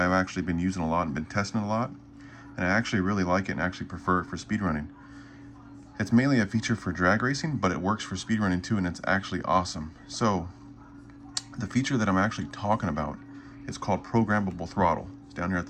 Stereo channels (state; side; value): identical; both; correlation 1.00